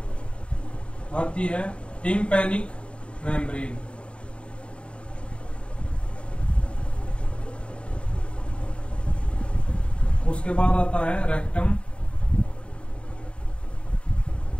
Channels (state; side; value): late; right; 0.058 ms